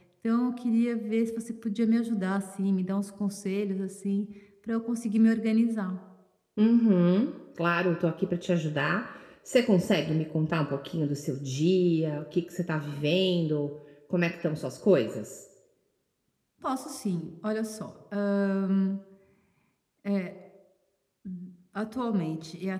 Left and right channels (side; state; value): both; identical; correlation 1.00